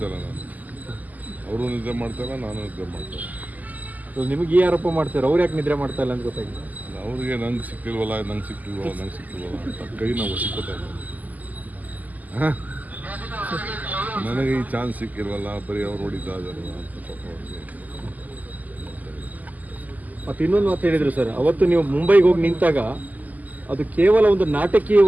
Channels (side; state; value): left; late; 0.080 ms